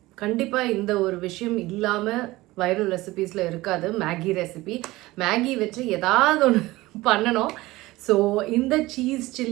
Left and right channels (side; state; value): left; quieter; 19.1 dB